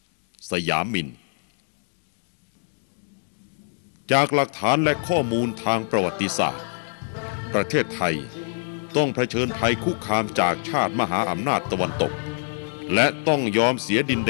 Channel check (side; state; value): right; silent; digital silence